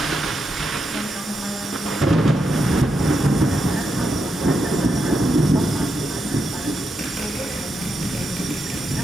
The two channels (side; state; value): both; normal; correlation 0.84